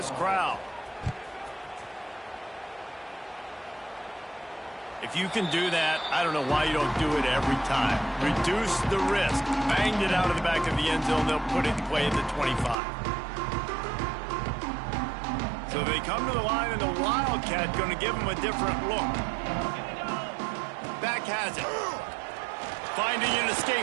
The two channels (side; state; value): left; drops out; at 12.8 s